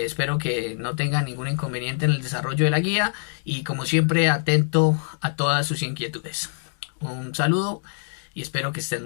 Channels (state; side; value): silent; right; digital silence